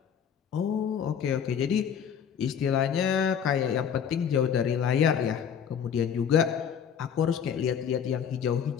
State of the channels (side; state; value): right; quieter; 7.9 dB